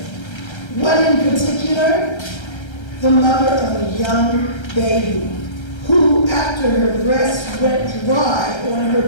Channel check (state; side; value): late; right; 1.3 ms